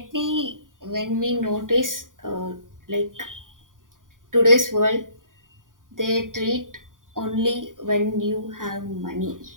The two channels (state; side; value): late; left; 0.89 ms